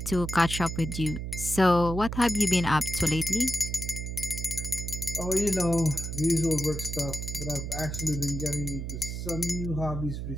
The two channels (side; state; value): right; noise; hum, 5 dB below the sound